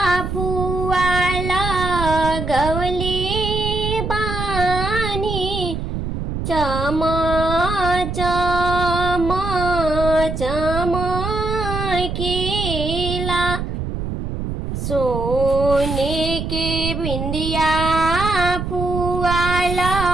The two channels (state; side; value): noise; right; rumble, 4 dB below the sound